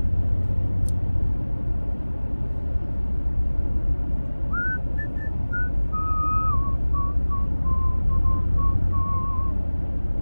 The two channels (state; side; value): inverted; both; correlation -1.00